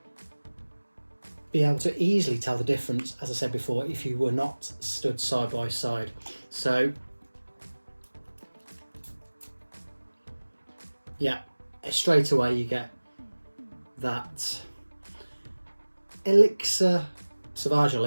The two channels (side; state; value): both; inverted; correlation -1.00